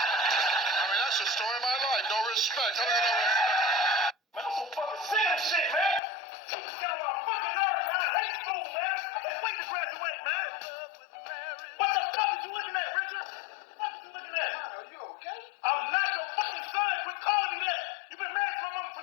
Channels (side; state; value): right; drops out; at 6.0 s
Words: mean, that's the story of my life. No respect. How do you know respect? Man, I'm so fucking sick of this shit, man. Teachers get on my fucking nerves, man. I hate school, man. I can't wait to graduate, man. What the fuck is you looking at, Richard? What is you looking at? Are you okay? I'm not your fucking son. Quit calling me that. You been married to my mama